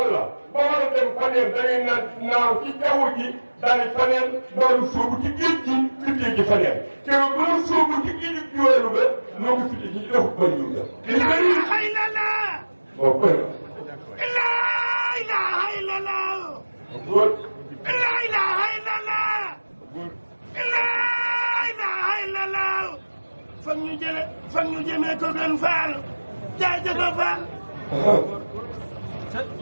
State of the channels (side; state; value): both; inverted; correlation -1.00